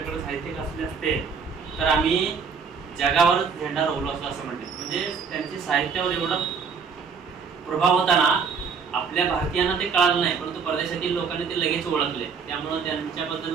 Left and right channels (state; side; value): quieter; left; 5.7 dB